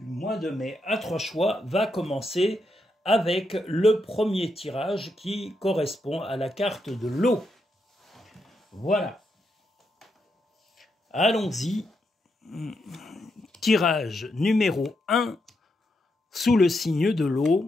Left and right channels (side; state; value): both; normal; correlation 0.82